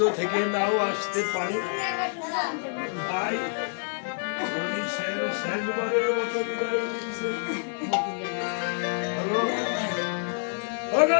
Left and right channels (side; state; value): right; silent; 60 dB below the other